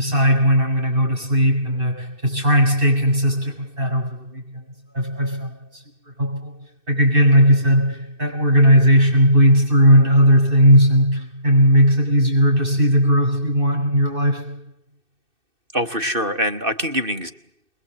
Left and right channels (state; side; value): late; left; 2.6 ms